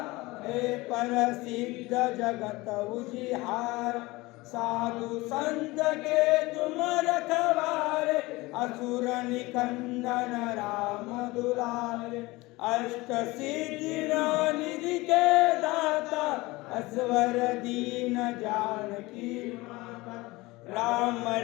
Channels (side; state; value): right; quieter; 21.5 dB